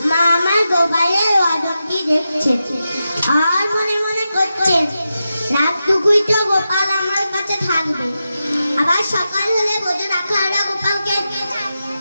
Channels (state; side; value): inverted; both; correlation -0.90